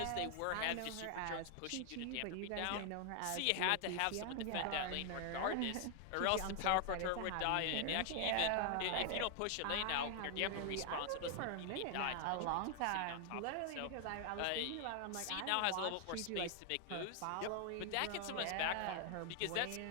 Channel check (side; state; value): both; different; correlation 0.00